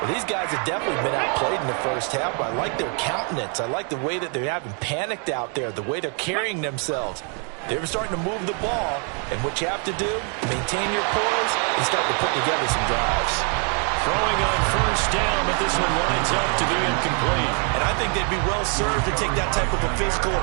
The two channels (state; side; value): quieter; left; 39.4 dB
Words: these guys have definitely been outplayed in the first half. I like their countenance. I like the way that they haven't panicked out there, the way they're carrying themselves. They're starting to move the ball, and what you have to do, maintain your poise and start to put together some drives. Throwing on first down, but this one lines up to be incomplete. And I think they'd be well served to take that type of a physical